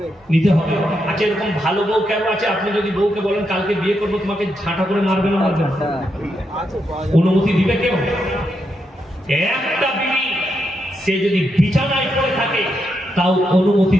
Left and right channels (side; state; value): both; normal; correlation 0.82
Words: নিতে হবে। আচ্ছা, এরকম ভালো বউ কেন আছে? আপনি যদি বউকে বলেন কালকে বিয়ে করবো, তোমাকে ঝাঁটা করে মারবে না মারবে না? অনুমতি দিবে কেউ? একটা বিবি সে যদি বিছানায় পড়ে থাকে তাও অনুমতি